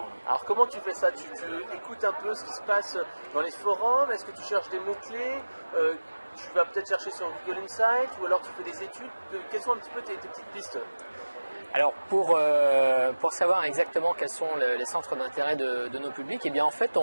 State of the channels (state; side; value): inverted; both; correlation -1.00